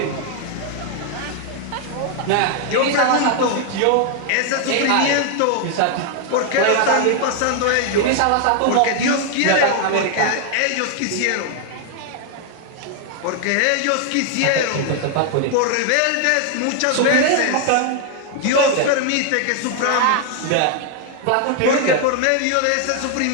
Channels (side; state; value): both; different; correlation 0.00